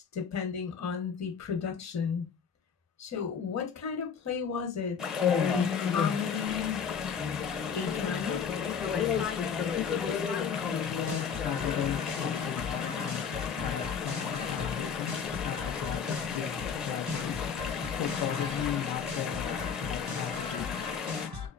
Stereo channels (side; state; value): right; quieter; 6.7 dB